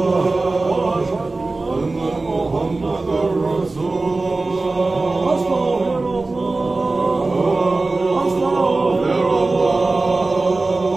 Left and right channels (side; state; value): left; quieter; 3.4 dB